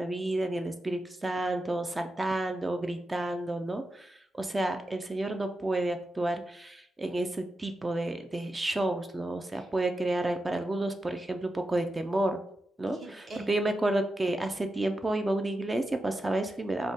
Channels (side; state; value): both; normal; correlation 0.89